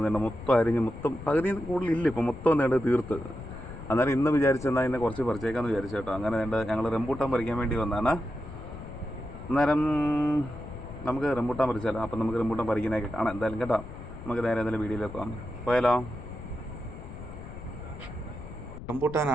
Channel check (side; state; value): left; noise; rumble, 12 dB below the sound